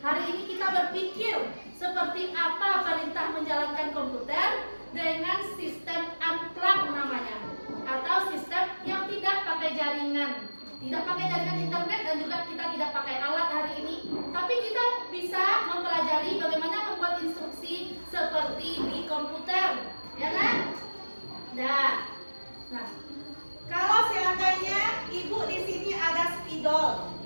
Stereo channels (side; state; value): both; inverted; correlation -1.00